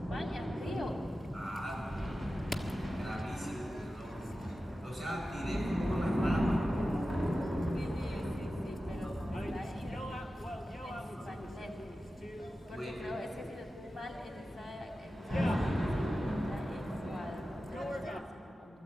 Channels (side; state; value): both; normal; correlation 0.93